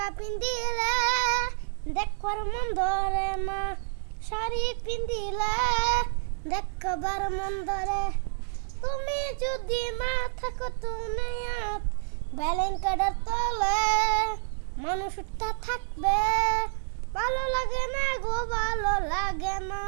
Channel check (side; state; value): left; silent; digital silence